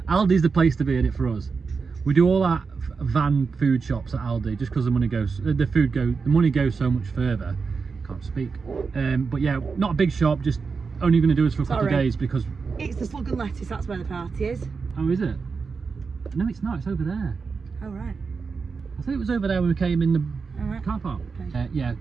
the place to be in it for us. We do all that van food shops at Aldi just because the money goes so much further. Can't speak. But yeah, not a big shop, just only going to do us for a couple of days because it's the Slug and Lettuce. That's where the party is. Oh, is it? No, it's not. It's over there. Oh, right. I thought it was over there when we came in the car park. Okay. Yeah,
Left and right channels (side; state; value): left; quieter; 5.0 dB